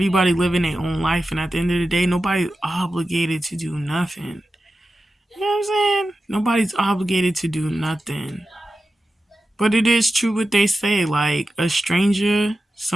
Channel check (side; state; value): both; normal; correlation 0.92